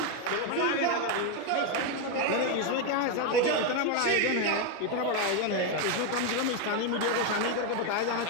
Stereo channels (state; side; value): different; both; correlation 0.02